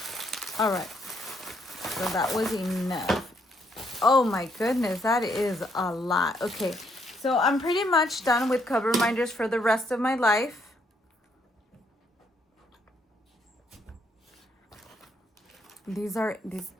All right, so that was enough. Oh my goodness, that is a lot. Okay, so I'm pretty much done with Coverminders for the rest of my life. These, I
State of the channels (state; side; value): normal; both; correlation 0.72